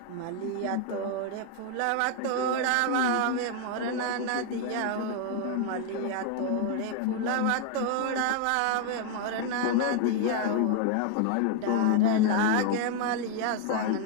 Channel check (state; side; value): different; both; correlation 0.01